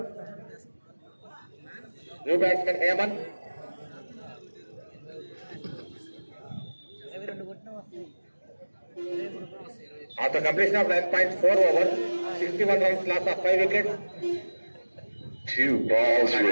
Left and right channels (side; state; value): both; inverted; correlation -1.00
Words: New batsmen Hemant. After completion of 9.4 overs, 61 runs loss of 5 wickets. 2 balls